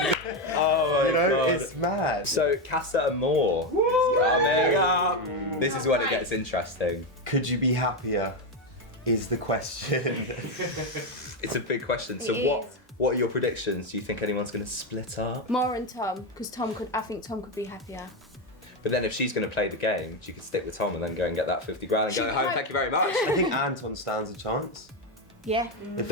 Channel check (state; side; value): normal; both; correlation 0.10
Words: Oh my You know, god. it's mad. So Casa Amor is coming up. This is when it gets interesting. Could you be happier? Is the question. It's a big question. So It what is. what are your predictions? Do you think anyone's going to split up? Maura and Tom, because I think Tom could be happier. But then if she's going to play the game, she could stick with Tom and then go and get that 50 grand and She go home. might. Thank you very much. I think Anton stands a chance. Yeah.